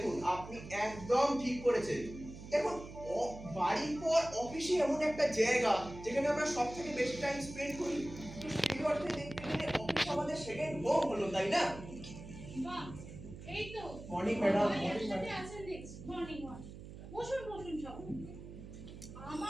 আপনি একদম ঠিক করেছেন। দেখুন, বাড়ির পর অফিসে এমন একটা জায়গা যেখানে আমরা সব থেকে বেশি টাইম স্পেন্ড করি। তো সেই অর্থে দেখতে গেলে অফিস আমাদের সেকেন্ড হোম হলো, তাই না? বাহ, এই তো মর্নিং ম্যাডাম। একসাথে আছেন দেখছি। Morning walk. বসুন বসুন সব।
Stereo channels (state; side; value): noise; right; hum, 13 dB below the sound